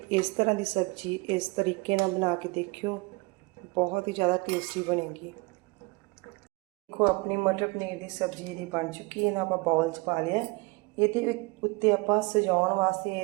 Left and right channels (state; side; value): quieter; left; 26.1 dB